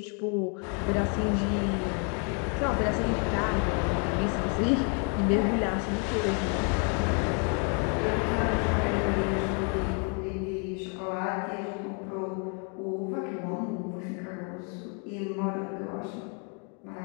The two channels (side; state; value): right; quieter; 38.6 dB